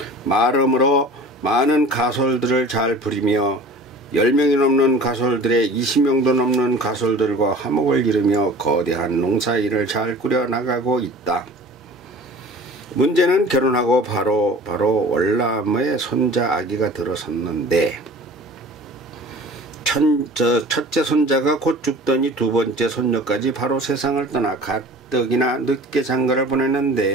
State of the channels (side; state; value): both; normal; correlation 0.43